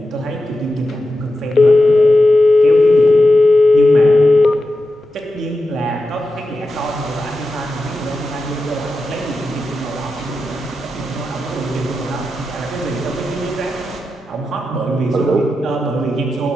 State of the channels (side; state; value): both; normal; correlation 0.90